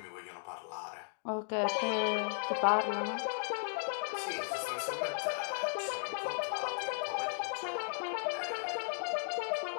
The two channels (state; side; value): silent; right; digital silence